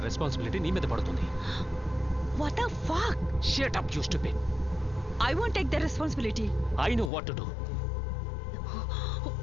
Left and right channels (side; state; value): right; drops out; at 7.1 s